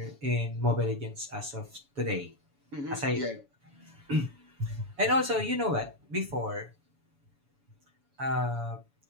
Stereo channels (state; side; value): late; left; 7.1 ms